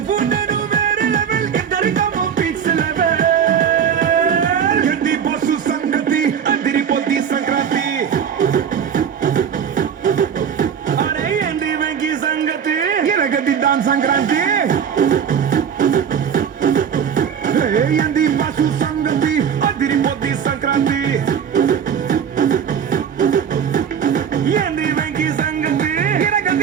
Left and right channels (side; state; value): left; quieter; 7.8 dB